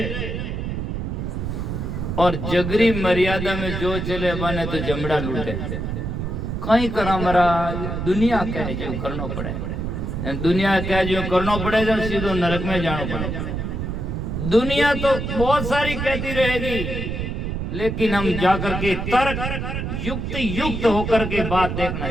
और जगरी मर्यादा में जो चले बने तो जमड़ा लूटे। कहीं करा महाराज दुनिया कह जो करना पड़े, दुनिया कह जो करना पड़ेगा सीधो नरक में जाना पड़ेगा। दुनिया तो बहुत सारी कहती रहेगी लेकिन हम जाकर के तर्क युक्त होकर के बात देखना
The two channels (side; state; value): right; noise; rumble, 3 dB below the sound